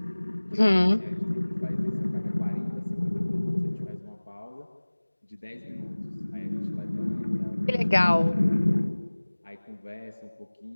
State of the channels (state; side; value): inverted; both; correlation -1.00